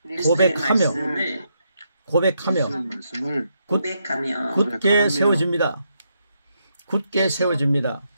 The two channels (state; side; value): inverted; both; correlation -0.79